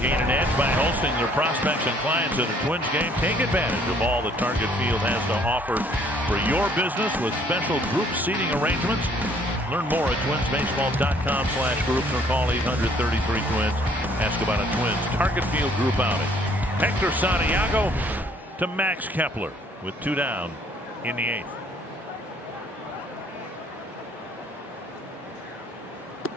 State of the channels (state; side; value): normal; both; correlation 0.61